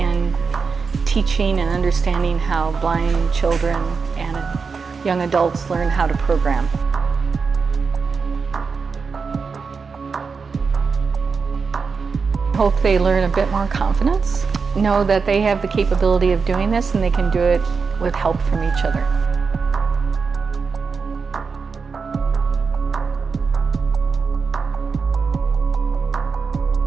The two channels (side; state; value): left; quieter; 5.1 dB